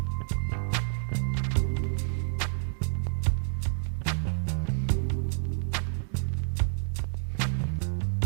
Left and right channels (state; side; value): silent; left; digital silence